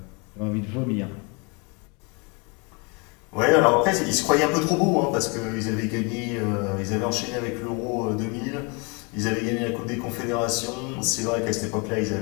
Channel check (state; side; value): quieter; right; 31.6 dB